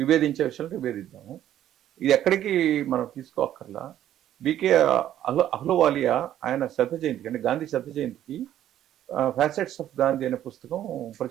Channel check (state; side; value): quieter; left; 11.7 dB